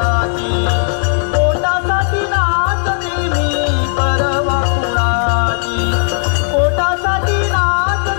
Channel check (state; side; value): silent; right; 67 dB below the other